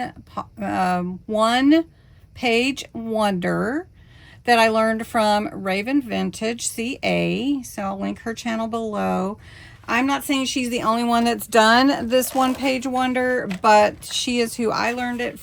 page wonder that I learned from Raven Vintage CA. So I'll link her channel below. I'm not saying she's the only one that's done this one page wonder, but she is who I learned it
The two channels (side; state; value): both; identical; correlation 1.00